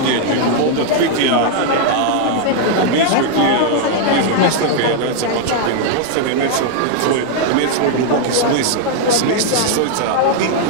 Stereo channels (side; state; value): both; different; correlation 0.00